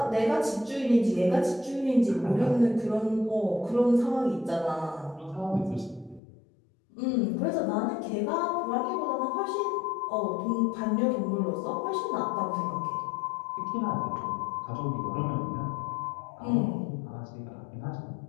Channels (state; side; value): drops out; right; at 6.2 s